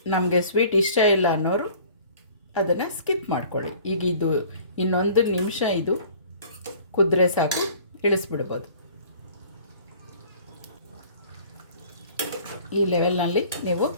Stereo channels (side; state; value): both; inverted; correlation -0.50